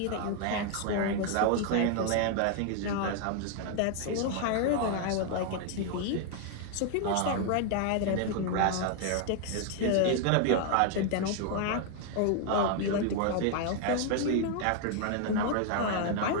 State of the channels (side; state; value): both; different; correlation 0.00